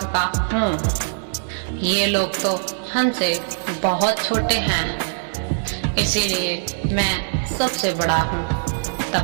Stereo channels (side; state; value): left; silent; digital silence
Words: का हूँ। ये लोग तो हमसे बहुत छोटे हैं, इसीलिए मैं सबसे बड़ा हूँ।